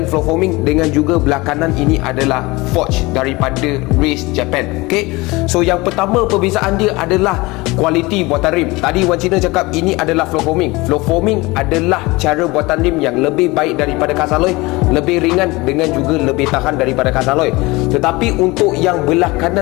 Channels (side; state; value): right; quieter; 22.7 dB